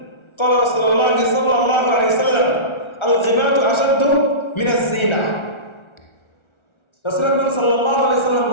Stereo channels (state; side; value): late; right; 1.4 ms